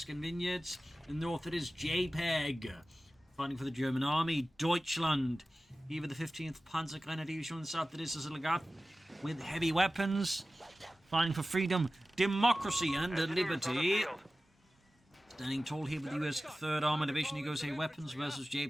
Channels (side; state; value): both; normal; correlation 0.96